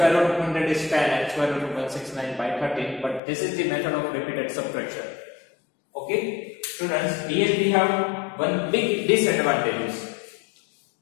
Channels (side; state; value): right; drops out; at 3.2 s